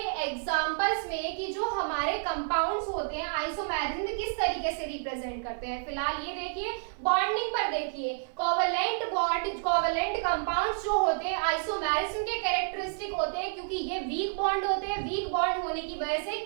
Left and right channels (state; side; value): silent; left; 58 dB below the other